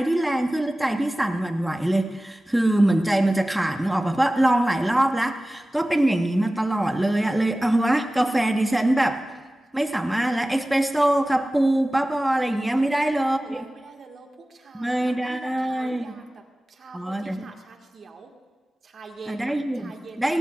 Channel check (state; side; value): normal; both; correlation 0.97